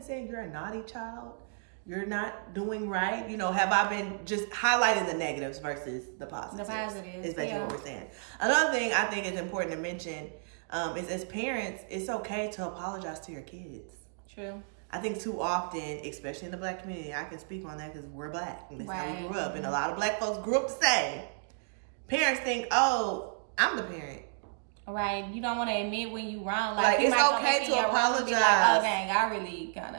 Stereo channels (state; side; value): silent; left; digital silence